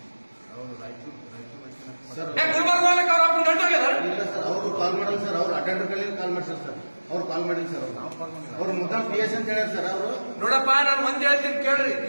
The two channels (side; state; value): both; inverted; correlation -1.00